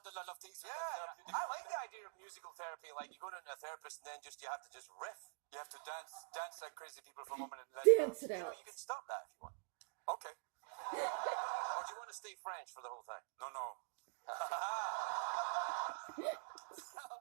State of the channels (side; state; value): left; silent; digital silence